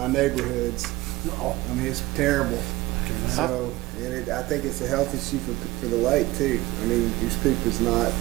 neighborhoods. I mean, it's terrible. So, and I think it's a health issue for the lake too. I mean, goose poop is not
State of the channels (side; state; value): left; quieter; 19.2 dB